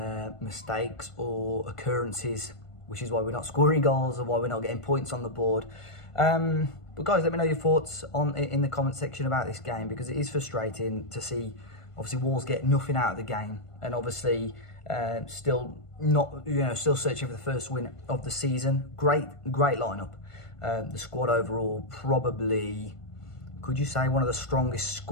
mistakes or occurrences, which is why we're not scoring goals and why we're not getting points on the board. But guys, let me know your thoughts in the comment section about this game, because it is frustrating to see obviously Wolves get nothing out of the game, and obviously still searching for the first win of the season. Great lineup. The squad overall, probably, could you say, one of the strongest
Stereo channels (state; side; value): late; right; 1.5 ms